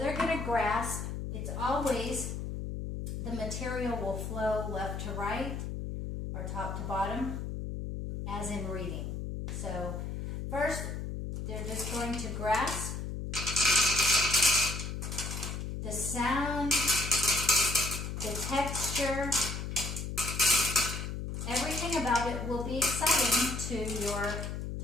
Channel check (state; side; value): noise; left; hum, 5 dB below the sound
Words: going to grasp. It's always, the material will flow left to right or top to bottom, as in reading. So first, they're just going to grasp. The sound, the texture, everything about it will be exciting to your